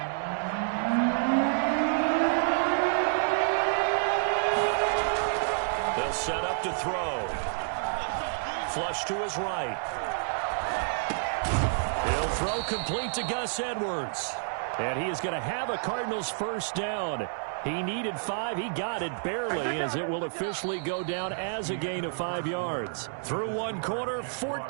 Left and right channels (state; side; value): silent; left; digital silence